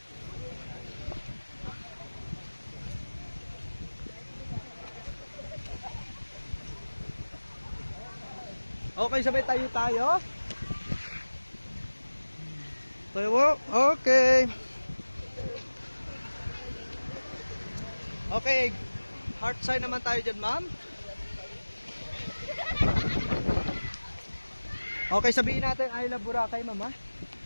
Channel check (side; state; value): both; inverted; correlation -1.00